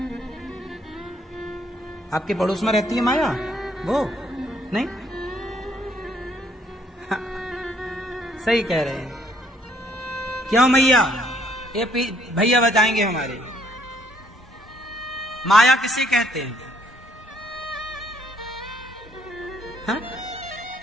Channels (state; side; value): normal; both; correlation 0.67